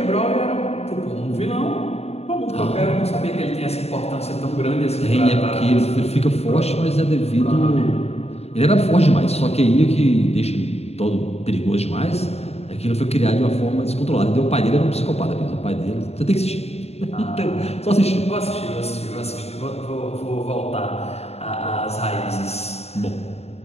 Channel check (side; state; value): right; late; 0.30 ms